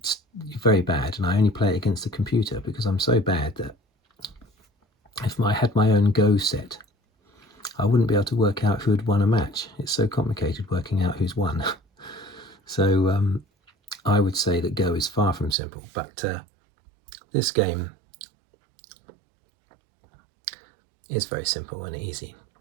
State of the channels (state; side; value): drops out; left; at 15.6 s